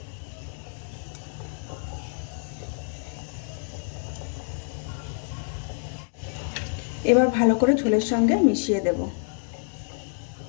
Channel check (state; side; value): silent; right; 60 dB below the other